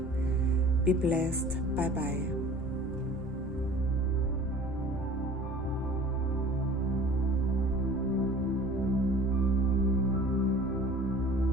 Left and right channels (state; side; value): normal; both; correlation 0.46